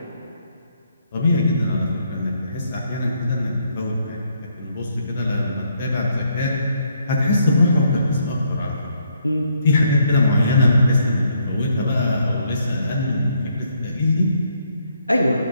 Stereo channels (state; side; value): inverted; both; correlation -0.72